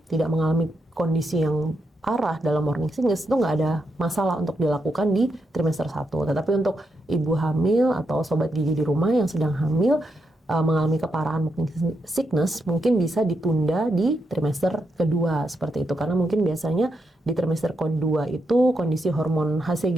tidak mengalami kondisi yang parah dalam morning sickness, itu nggak ada masalah untuk dilakukan di trimester 1. Tetapi untuk ibu hamil atau sobat gigi di rumah yang sedang hamil mengalami keparahan morning sickness, mungkin bisa ditunda di trimester kedua seperti itu, karena mungkin biasanya di trimester kedua itu kondisi hormon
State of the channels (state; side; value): normal; both; correlation 0.83